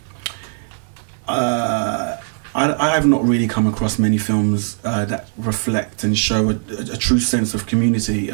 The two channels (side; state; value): left; silent; 66 dB below the other